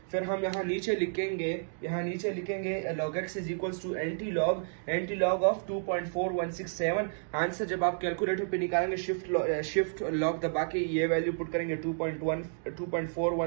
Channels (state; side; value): silent; left; digital silence